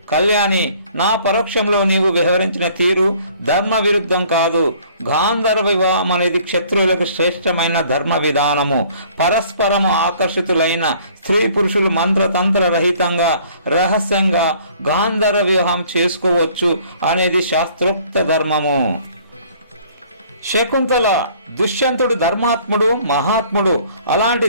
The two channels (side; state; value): both; inverted; correlation -0.56